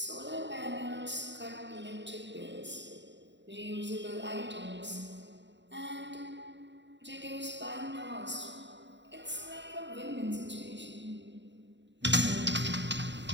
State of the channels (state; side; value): late; left; 0.52 ms